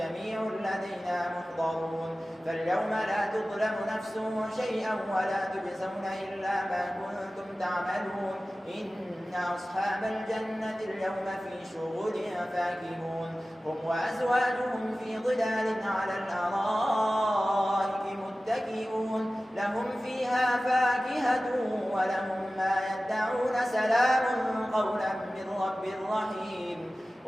لدينا محضرون فاليوم لا تظلم نفس شيئا ولا تجزون إلا ما كنتم تعملون إن أصحاب الجنة اليوم في شغل فاكهون هم وأزواجهم في ظلال على الأرائك متكئون لهم فيها فاكهة ولهم ما يدعون سلام قولا من رب رحيم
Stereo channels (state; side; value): normal; both; correlation 0.96